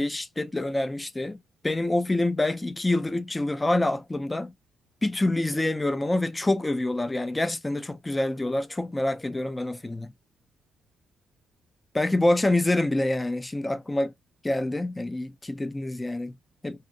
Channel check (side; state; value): both; normal; correlation 0.98